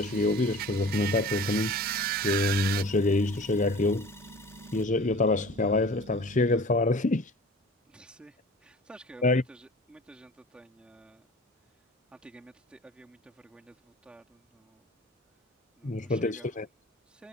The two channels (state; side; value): normal; both; correlation 0.43